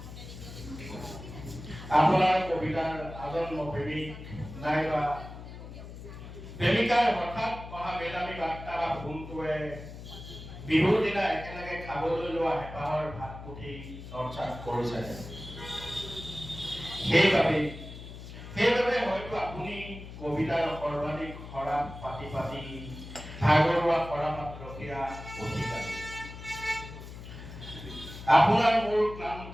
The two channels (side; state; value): left; noise; hum, 13 dB below the sound